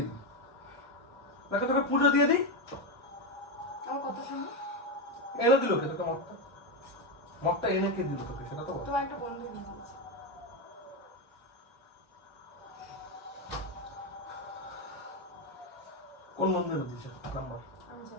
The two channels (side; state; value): both; normal; correlation 0.10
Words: দিই। তোকে পুজো দিয়ে দিই। আমার কথা শোনো। এনে দিল কে তোকে মদটা? মদটা এনে কে দিল তোকে সেটা তো বল। তোমার একটা বন্ধু এনে দিয়েছে। কোন বন্ধু এনে দিয়েছে নাম বল। আমি